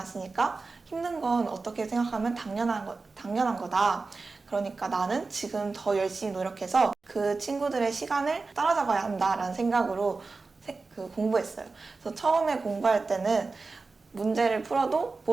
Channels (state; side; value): quieter; left; 3.9 dB